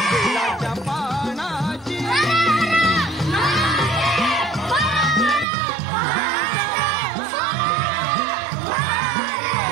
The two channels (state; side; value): drops out; left; at 5.5 s